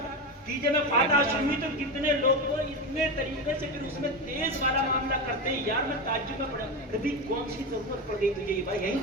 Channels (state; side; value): normal; both; correlation 0.17